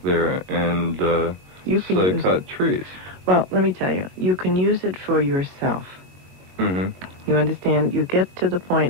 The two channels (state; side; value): late; left; 22 ms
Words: there and say cut trees. Well, let me tell you, you can use it for yourself. Mm-hmm. You understand? You get to the